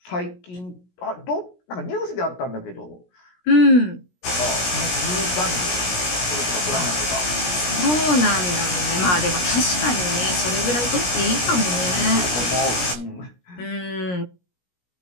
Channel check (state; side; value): late; right; 17 ms